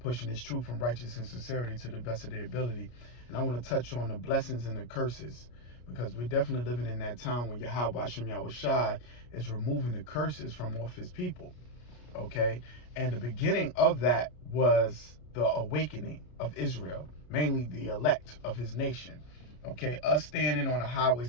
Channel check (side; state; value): right; late; 33 ms